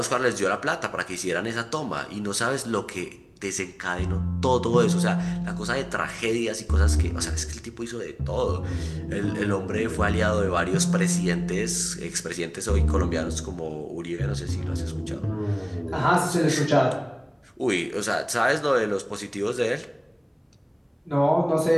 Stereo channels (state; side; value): identical; both; correlation 1.00